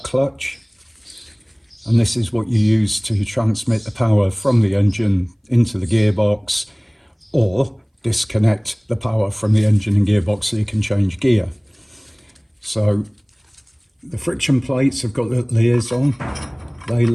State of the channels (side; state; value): both; identical; correlation 1.00